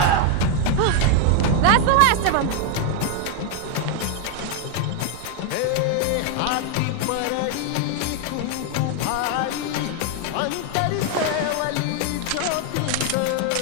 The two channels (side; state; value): both; different; correlation 0.01